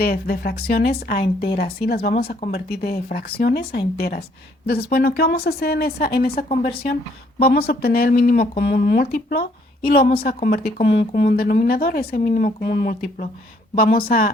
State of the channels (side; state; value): both; normal; correlation 0.66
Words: fracciones a enteras, ¿sí? Las vamos a convertir de fracciones a enteras. Entonces, bueno, ¿qué vamos a hacer en esa conversión? Vamos a obtener el mínimo común múltiplo y lo vamos a convertir como un común denominador, ese mínimo común múltiplo. Vamos